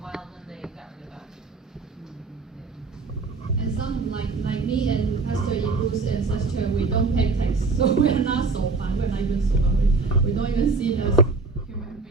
while, then they got rid of that. And some like me and Pastor Ibu's ancestor, we don't pay tax, so we are not so fun. We're not even so fun. We don't even see it as human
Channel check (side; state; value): left; quieter; 4.0 dB